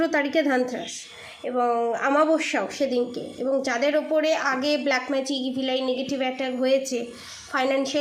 তারিখে ধানতেরাস এবং আমাবস্যাও সেদিনকে। এবং যাদের ওপরে আগে black magic, evil I, negative attack হয়েছে,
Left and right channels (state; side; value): identical; both; correlation 1.00